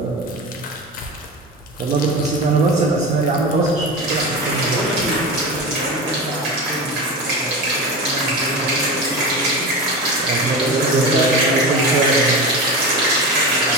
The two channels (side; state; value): both; normal; correlation 0.25